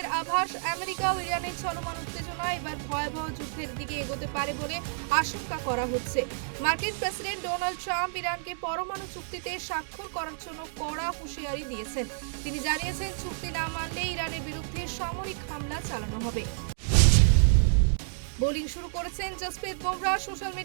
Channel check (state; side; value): silent; left; digital silence